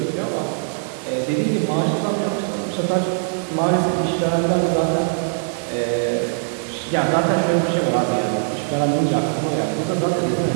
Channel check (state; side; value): silent; left; 65 dB below the other